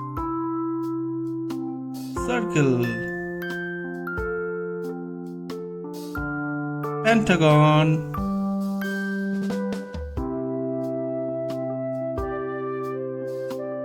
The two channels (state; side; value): identical; both; correlation 1.00